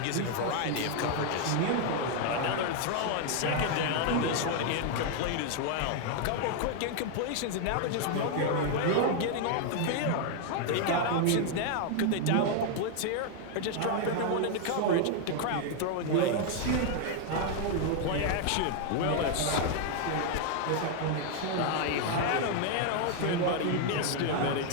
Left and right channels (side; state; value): both; different; correlation 0.00